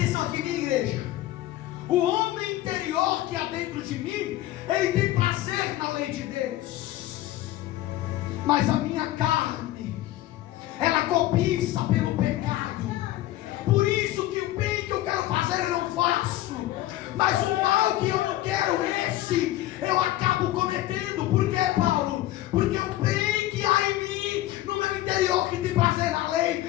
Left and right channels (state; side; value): quieter; right; 15.2 dB